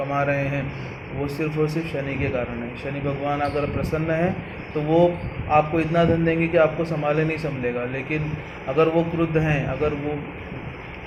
रहे हैं वो सिर्फ और सिर्फ शनि के कारण है। शनि भगवान अगर प्रसन्न है तो वो आपको इतना धन देंगे कि आपको संभाले नहीं संभलेगा, लेकिन अगर वो क्रुद्ध हैं, अगर वो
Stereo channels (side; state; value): both; identical; correlation 1.00